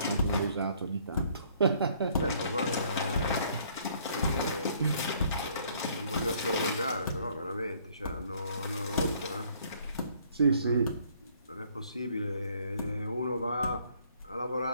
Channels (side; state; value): both; inverted; correlation -0.62